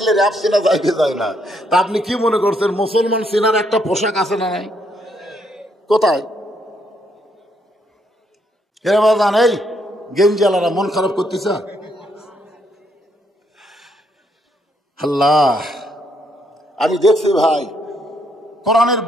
র্যাব চেনা যায় কি যায় না? তা আপনি কি মনে করছেন মুসলমান চেনার একটা পোশাক আছে না নাই? কোথায়? জান এই গেঞ্জালারা মন খারাপ করতেছে। আল্লাহ, আমি দেখছি ভাই, কোরআনের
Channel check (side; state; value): both; normal; correlation 0.73